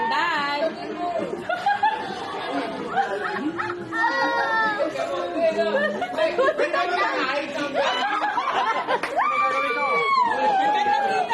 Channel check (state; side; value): identical; both; correlation 1.00